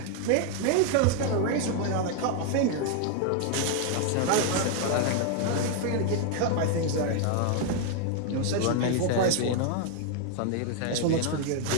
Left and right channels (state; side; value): different; both; correlation 0.00